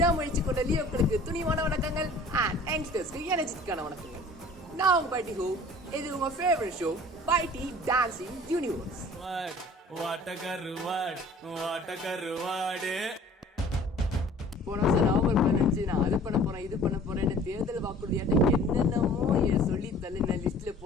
கொண்ட லியோக்களுக்கு துணிவான வணக்கங்கள். அண்ட் யங்ஸ்டர்ஸ்க்கு எனர்ஜிக்கான வணக்கங்கள். நான் பை ஹோ. இது உங்க ஃபேவரட் ஷோ பைடி டான்சிங் யூனிவர்ஸ். போன வருஷம் நவம்பர் 15 நான் அது பண்ண போறேன் இது பண்ண போறேன்னு தேர்தல் வாக்குறுதியாட்ட என்னென்னமோ சொல்லி தள்ளி நான் லிஸ்ட்ல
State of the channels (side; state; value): both; normal; correlation 0.49